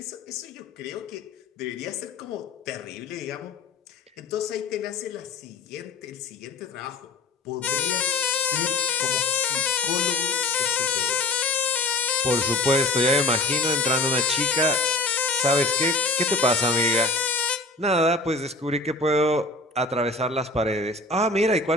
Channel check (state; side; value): quieter; right; 3.1 dB